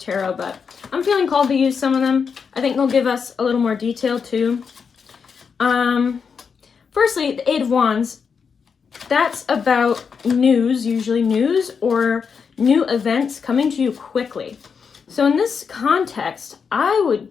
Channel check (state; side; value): quieter; right; 6.1 dB